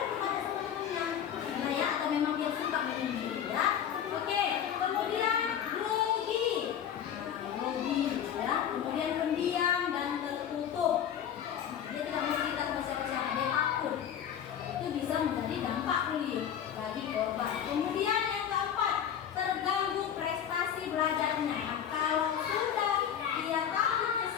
bertanya sama temannya, ya, atau memang dia suka menyendiri, ya. Oke, kemudian grogi. Nah, grogi, ya. Kemudian pendiam dan tertutup. Dia tidak mau cerita sama siapa-siapa, dia takut. Itu bisa menjadi dampak bullying bagi korban. Kemudian yang keempat, terganggu prestasi belajarnya. Kalau sudah dia takut ke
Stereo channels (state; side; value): quieter; right; 9.1 dB